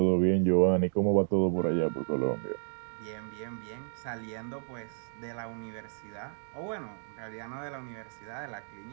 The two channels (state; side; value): silent; left; digital silence